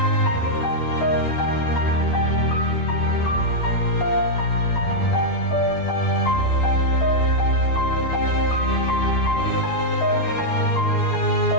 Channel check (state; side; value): late; right; 12 ms